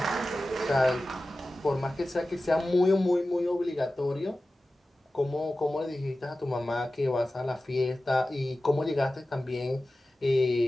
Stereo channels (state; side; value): normal; both; correlation 0.95